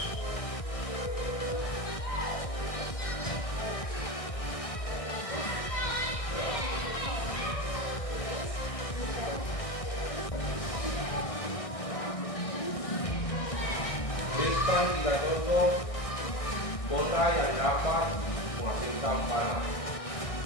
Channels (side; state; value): right; late; 1.6 ms